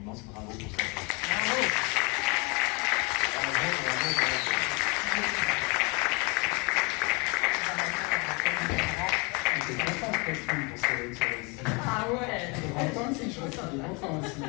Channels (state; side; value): quieter; right; 29.9 dB